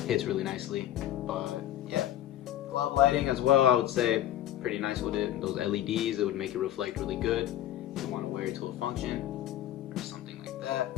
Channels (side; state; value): right; quieter; 12.6 dB